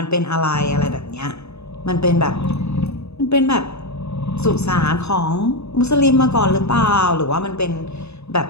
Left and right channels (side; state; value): right; late; 0.80 ms